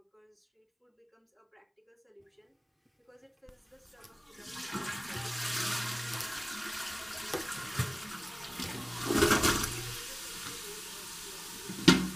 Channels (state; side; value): identical; both; correlation 1.00